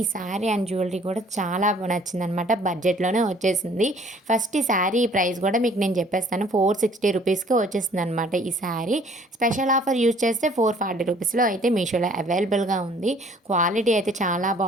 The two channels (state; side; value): normal; both; correlation 0.56